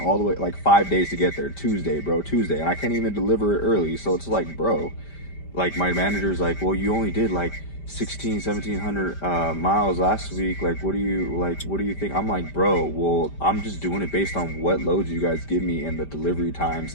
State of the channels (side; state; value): right; late; 5.1 ms